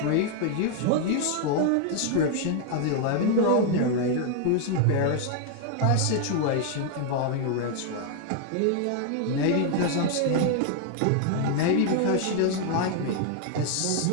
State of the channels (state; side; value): different; both; correlation 0.00